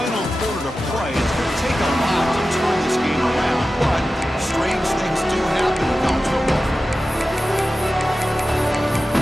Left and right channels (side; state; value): both; normal; correlation 0.94